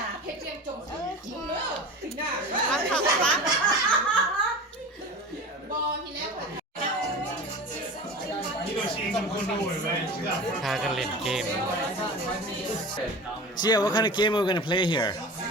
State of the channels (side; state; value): both; normal; correlation 0.33